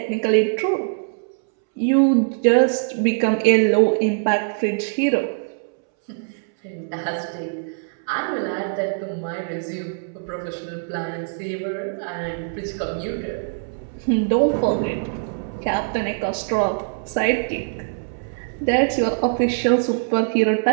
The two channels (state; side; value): silent; left; 64 dB below the other